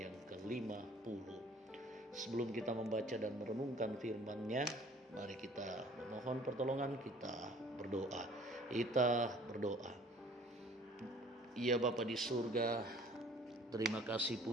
yang ke-50. Sebelum kita membaca dan merenungkan firman-Nya, mari kita mohon pertolongan, kita berdoa. Kita berdoa. Ya Bapa di surga, terima kasih,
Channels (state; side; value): normal; both; correlation 0.52